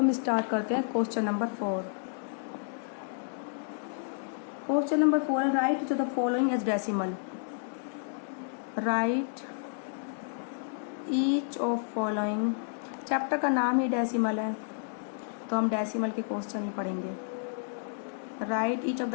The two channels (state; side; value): silent; right; digital silence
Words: स्टार्ट करते हैं क्वेश्चन नंबर 4। क्वेश्चन नंबर 4 है write to the following as decimal. Write each of following. Chapter का नाम ही डेसिमल है तो हम डेसिमल के क्वेश्चन ही पढ़ेंगे। Write each of